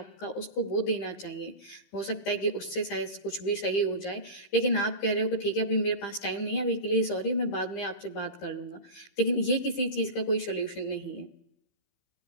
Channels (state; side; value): late; right; 15 ms